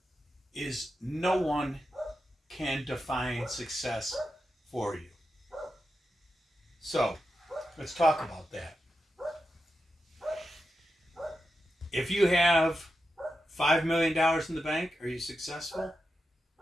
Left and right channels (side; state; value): both; normal; correlation 0.89